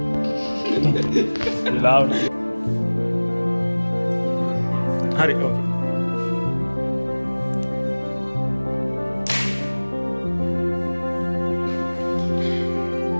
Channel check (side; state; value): both; inverted; correlation -1.00